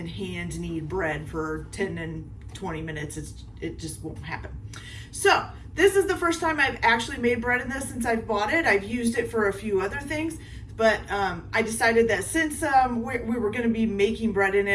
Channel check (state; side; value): identical; both; correlation 1.00